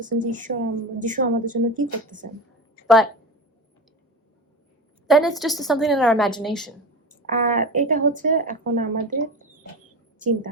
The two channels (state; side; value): normal; both; correlation 0.26